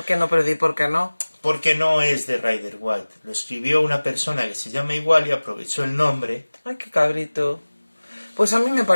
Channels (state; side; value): inverted; both; correlation -1.00